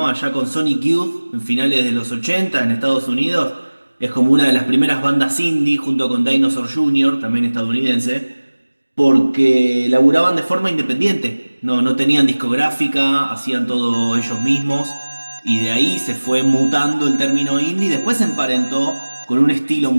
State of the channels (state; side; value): inverted; both; correlation -1.00